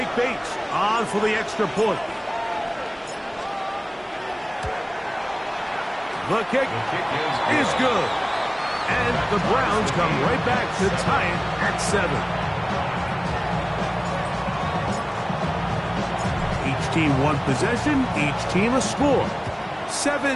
Bates on for the extra point. The kick is good. And the Browns come right back to tie it at 7. Each team 1 possession, each team a score.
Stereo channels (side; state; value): both; identical; correlation 1.00